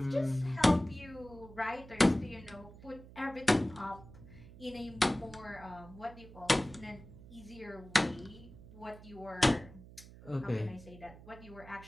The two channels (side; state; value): right; noise; hum, 18 dB below the sound